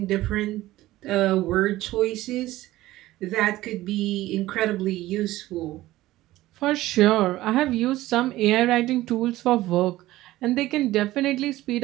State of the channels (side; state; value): left; quieter; 16.4 dB